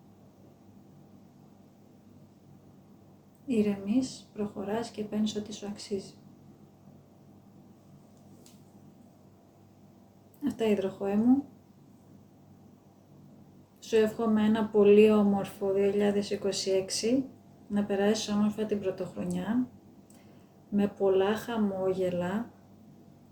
ηρεμείς, προχωράς και παίρνεις ό,τι σου αξίζει. Αυτά, υδροχόε μου. Σου εύχομαι ένα πολύ όμορφο 2026, να περάσεις όμορφα την πρωτοχρονιά, με πολλά χαμόγελα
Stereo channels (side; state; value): both; identical; correlation 1.00